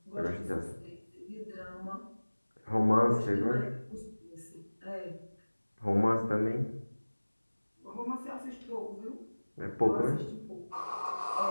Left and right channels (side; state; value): both; inverted; correlation -1.00